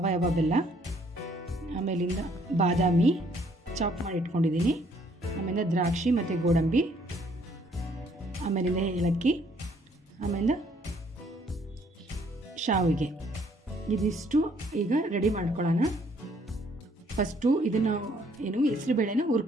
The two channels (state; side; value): normal; both; correlation 0.64